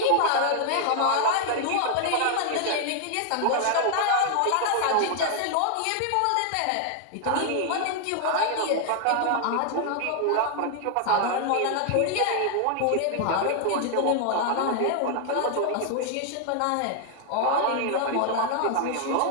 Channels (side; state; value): both; different; correlation 0.00